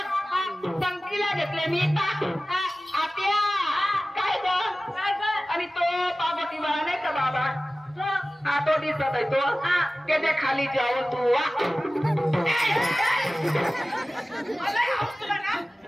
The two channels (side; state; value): both; normal; correlation 0.97